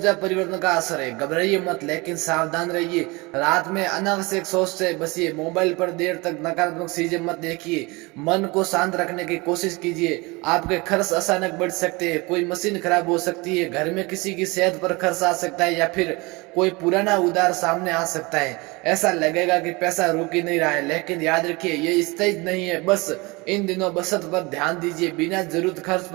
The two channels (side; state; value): left; quieter; 25.2 dB